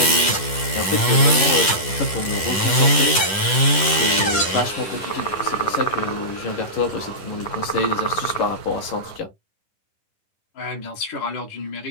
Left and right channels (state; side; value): late; right; 10 ms